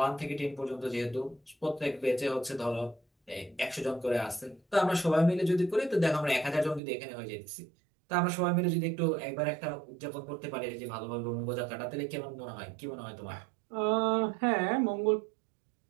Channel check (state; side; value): drops out; left; at 6.8 s